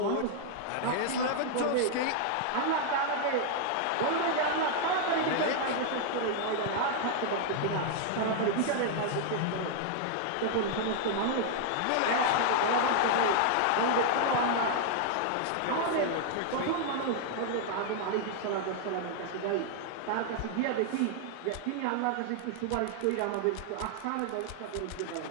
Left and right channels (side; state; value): both; different; correlation 0.00